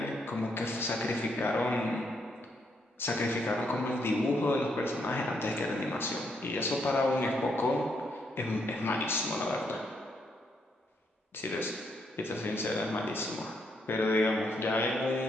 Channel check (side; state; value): both; normal; correlation 0.75